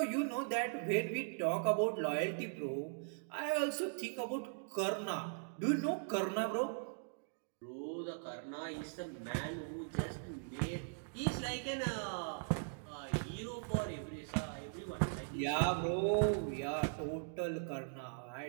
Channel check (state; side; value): silent; left; digital silence